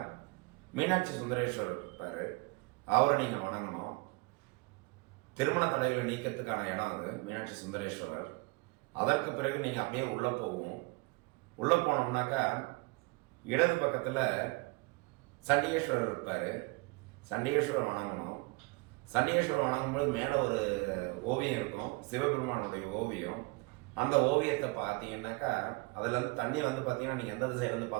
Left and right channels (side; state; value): left; quieter; 26.2 dB